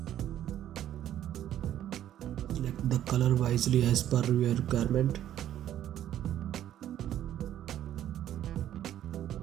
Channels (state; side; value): quieter; left; 11.6 dB